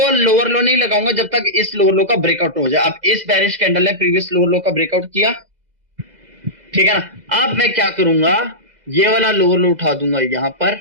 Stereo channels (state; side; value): late; left; 2.0 ms